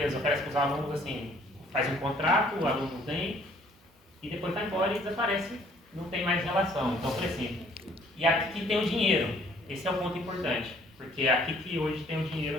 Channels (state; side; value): normal; both; correlation 0.60